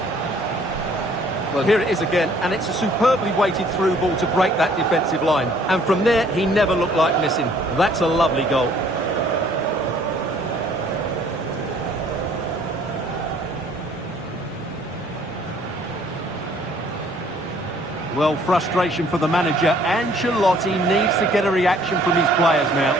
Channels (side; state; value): both; normal; correlation 0.59